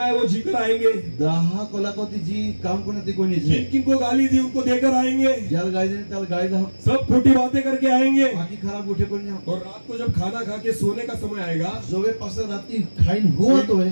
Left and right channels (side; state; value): both; inverted; correlation -1.00